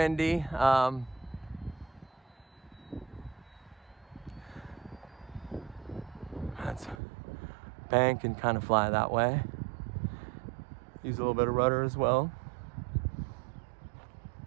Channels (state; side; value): drops out; left; at 7.0 s